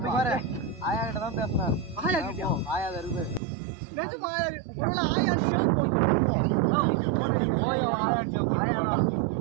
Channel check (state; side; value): drops out; left; at 3.4 s